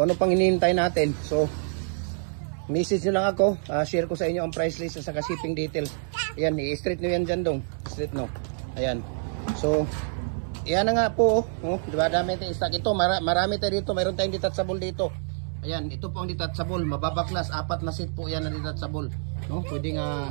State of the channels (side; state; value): left; silent; 60 dB below the other